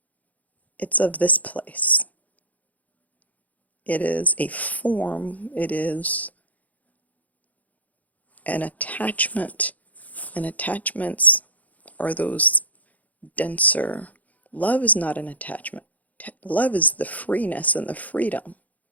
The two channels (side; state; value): right; late; 0.076 ms